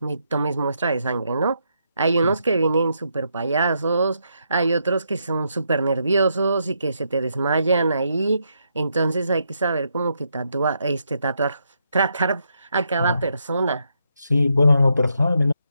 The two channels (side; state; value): both; inverted; correlation -0.79